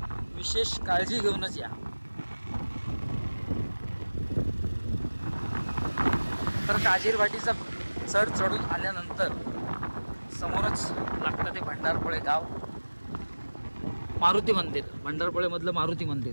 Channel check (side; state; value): both; inverted; correlation -1.00